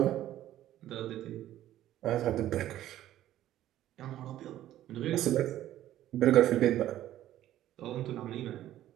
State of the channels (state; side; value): quieter; left; 13.1 dB